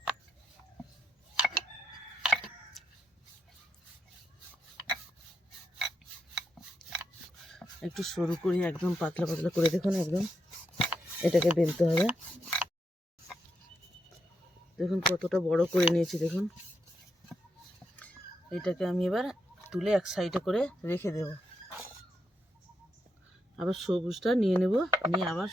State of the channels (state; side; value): normal; both; correlation 0.83